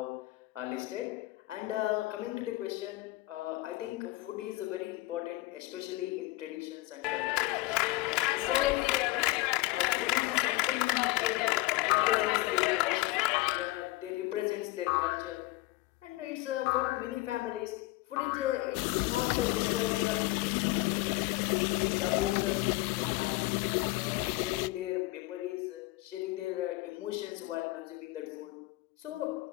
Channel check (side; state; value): right; quieter; 20.1 dB